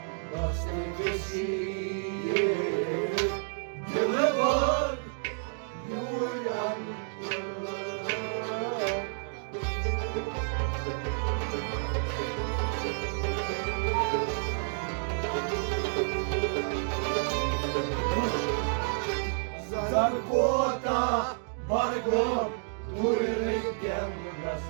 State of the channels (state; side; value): silent; left; 58 dB below the other